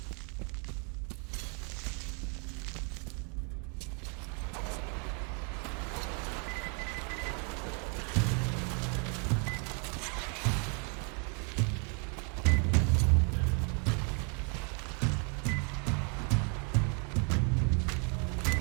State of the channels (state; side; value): quieter; left; 37.9 dB